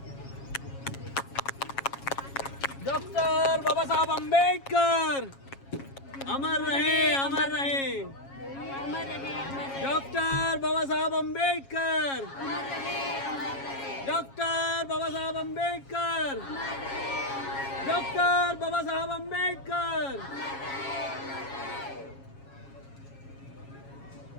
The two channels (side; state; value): right; late; 7.3 ms